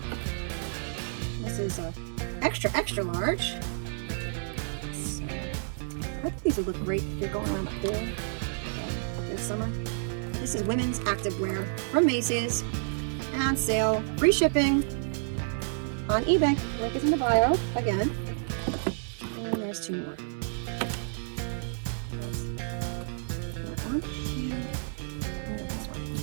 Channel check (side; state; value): left; silent; digital silence